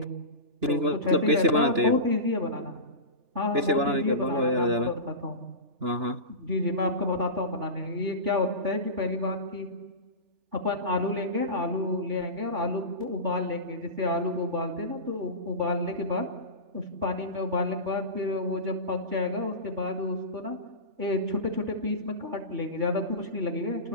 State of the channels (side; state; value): left; late; 2.9 ms